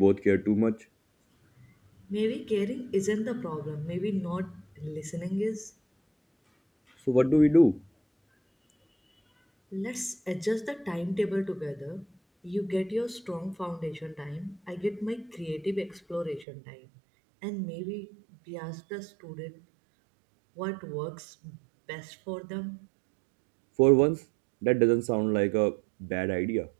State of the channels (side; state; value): left; drops out; at 16.4 s